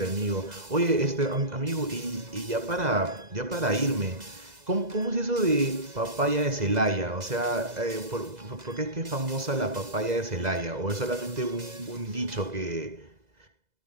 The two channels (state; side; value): late; left; 2.0 ms